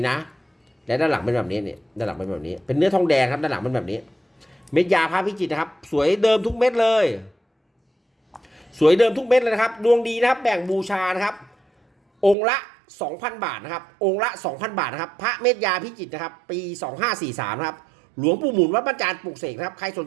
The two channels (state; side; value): drops out; left; at 12.4 s